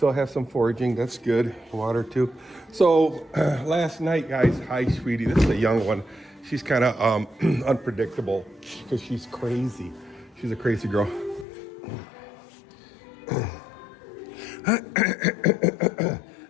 have some foraging. That's good. Water too. So last night, guys. Hi, sweetie. This is a young one. She's kind of unpredictable because she's crazy. She's a crazy girl.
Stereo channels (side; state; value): right; drops out; at 11.5 s